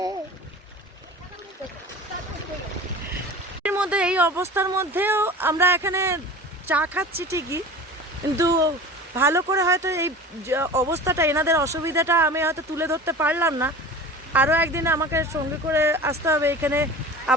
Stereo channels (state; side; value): normal; both; correlation 0.37